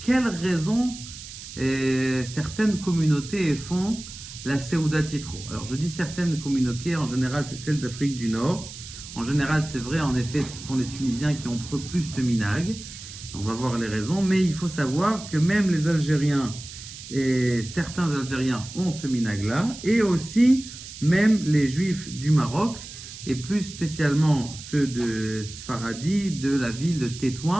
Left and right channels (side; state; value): right; noise; hiss, 13 dB below the sound